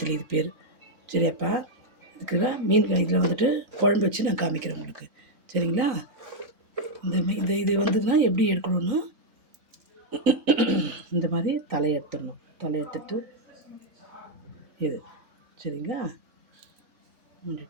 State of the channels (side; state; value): left; late; 3.9 ms